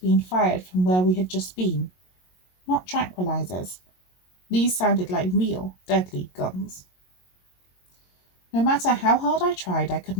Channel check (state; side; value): late; right; 22 ms